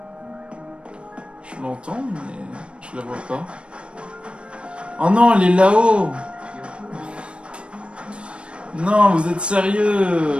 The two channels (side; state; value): left; late; 0.058 ms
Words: Je l'entends, mais je la vois pas. Oh non, elle est là-haut! Non, vous êtes